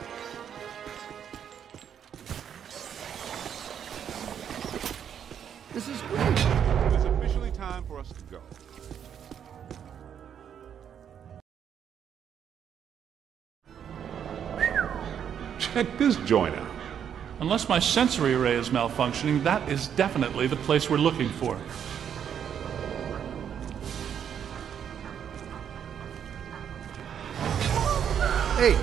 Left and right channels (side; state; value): left; quieter; 8.6 dB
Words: This is great. It's officially time for us to go. Check this joint out. Unless my sensory array is malfunctioning, that is definitely the place we're looking for. Hey,